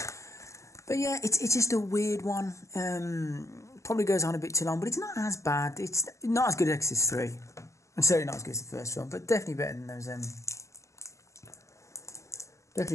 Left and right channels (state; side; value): late; right; 0.15 ms